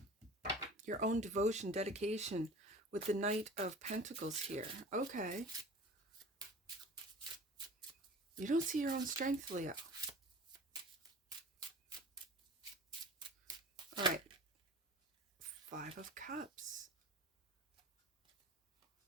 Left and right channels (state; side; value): normal; both; correlation 0.40